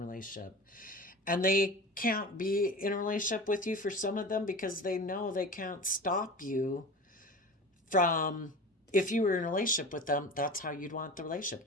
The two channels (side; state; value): both; normal; correlation 0.34